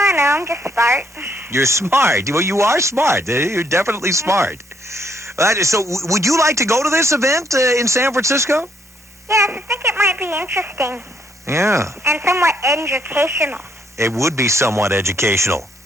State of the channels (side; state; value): both; normal; correlation 0.70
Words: don't know, I'm just smart. You're smart. Well, you are smart. You're definitely smart. So, would you like to go to this event in San Francisco? Yes, I think it might be interesting. Yeah. And somewhat educational. It would be somewhat educational.